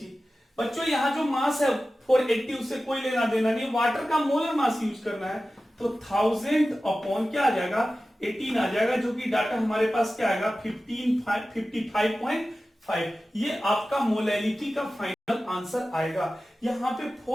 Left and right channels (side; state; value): both; normal; correlation 0.95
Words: बच्चों यहां जो मास है 480 उससे कोई लेना देना नहीं, वाटर का मोलर मास यूज करना है। तो 1000 अपॉन क्या आ जाएगा? 18 आ जाएगा, जो कि डाटा हमारे पास क्या आएगा? 55.5। ये आपका मोलैरिटी का फाइनल आंसर आएगा। यहाँ पे